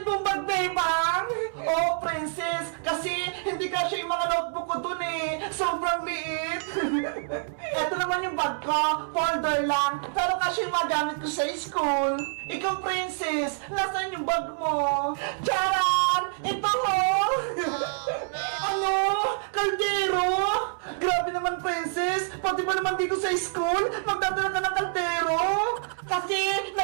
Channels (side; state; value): left; silent; 60 dB below the other